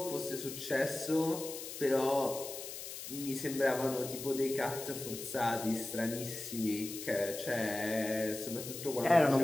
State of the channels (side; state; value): left; noise; hiss, 9 dB below the sound